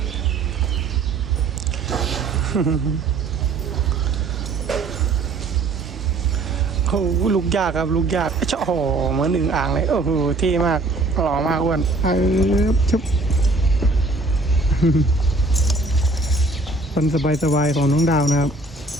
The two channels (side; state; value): left; quieter; 3.2 dB